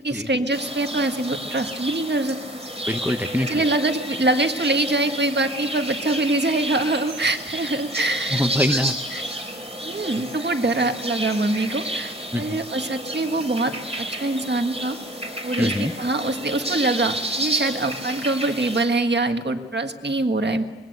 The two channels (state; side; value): normal; both; correlation 0.47